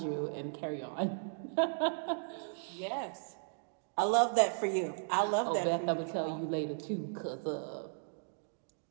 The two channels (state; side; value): silent; left; digital silence